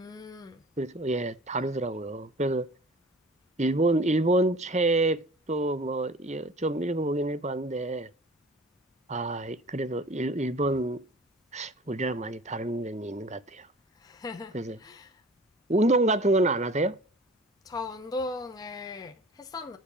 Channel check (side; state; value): both; normal; correlation 0.44